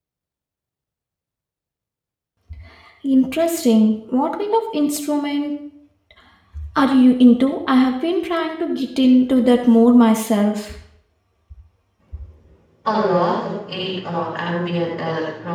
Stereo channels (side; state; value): both; identical; correlation 1.00